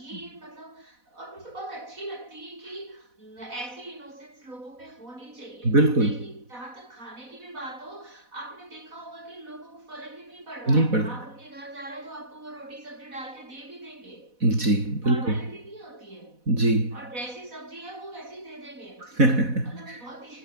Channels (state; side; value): late; left; 4.1 ms